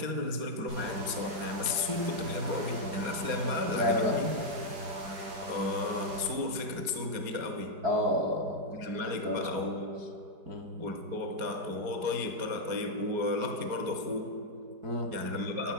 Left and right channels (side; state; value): left; late; 4.8 ms